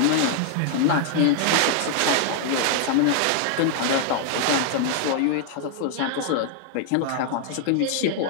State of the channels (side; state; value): both; different; correlation 0.00